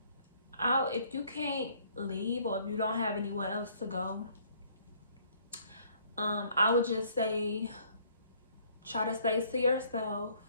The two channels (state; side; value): inverted; both; correlation -0.61